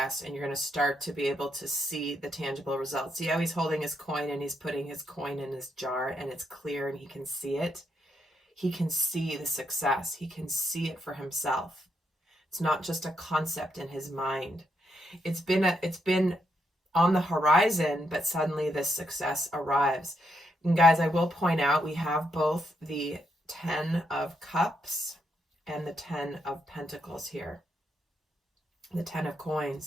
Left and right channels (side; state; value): both; normal; correlation 0.79